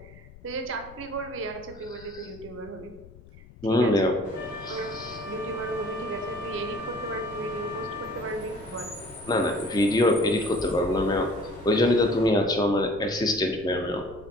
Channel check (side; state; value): left; noise; rumble, 20 dB below the sound